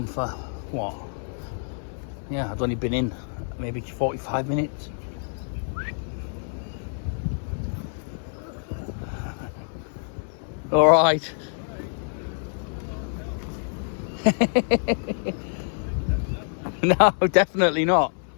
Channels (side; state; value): right; silent; 61 dB below the other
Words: for what? Yeah, I'd only been in maybe 45 minutes. All right. No, definitely not.